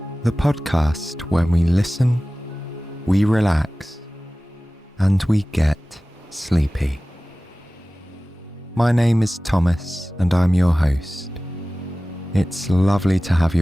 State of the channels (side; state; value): both; normal; correlation 0.97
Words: the podcast where we listen, we relax, and we get sleepy. My name is Thomas and I'm your host. It's lovely to have